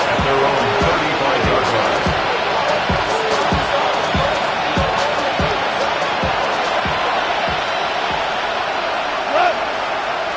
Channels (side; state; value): both; identical; correlation 1.00